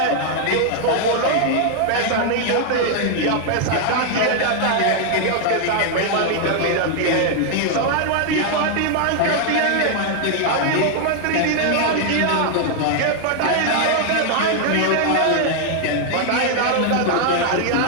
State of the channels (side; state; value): both; different; correlation 0.00